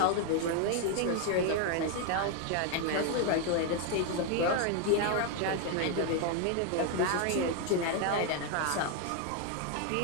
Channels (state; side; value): different; both; correlation 0.01